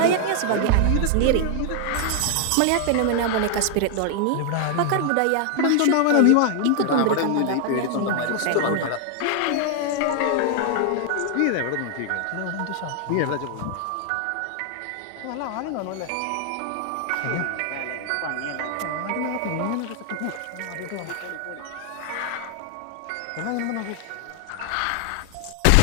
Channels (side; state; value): both; different; correlation 0.00